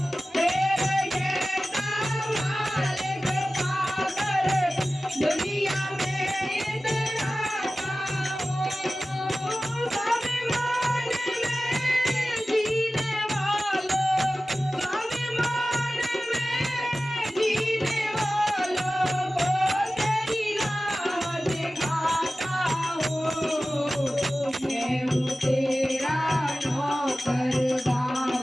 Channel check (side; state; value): both; normal; correlation 0.96